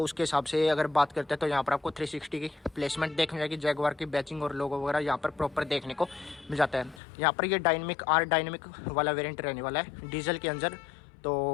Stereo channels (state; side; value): drops out; right; at 7.0 s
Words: उसके हिसाब से अगर बात करते हैं तो यहाँ पर आपको 360 की प्लेसमेंट देखने जाएगी। जैगवार की बैचिंग और लोगो वगैरह यहाँ पर प्रॉपर देखने को मिल जाता है। यहाँ पर ये डायनेमिक वाला वेरियंट रहने वाला है डीजल के अंदर, तो